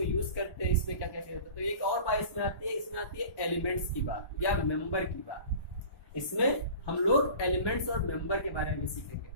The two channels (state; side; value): late; right; 1.1 ms